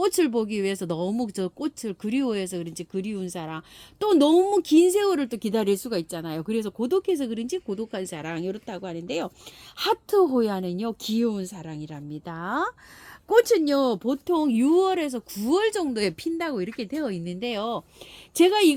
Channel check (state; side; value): identical; both; correlation 1.00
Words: 보기 위해서 너무 저 꽃을 그리워해서 그런지 그리운 사랑, 또 너무 긴 세월을 또 기다릴 수가 있잖아요. 그래서 고독해서 그런지 고독한 사랑 이렇다고 하는데요. 하트 호야는요 귀여운 사랑이랍니다. 꽃은요 보통 6월에서 9월 정도에 핀다고 이렇게 되어 있는데요. 제가